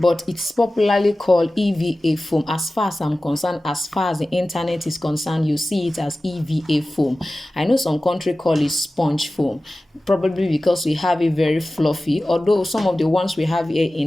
it's popularly called EVA foam. As far as I'm concerned, as far as the internet is concerned, you see it as EVA foam. I know some country call it sponge foam, probably because we have it very fluffy, although some of the ones we have here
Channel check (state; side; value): normal; both; correlation 0.96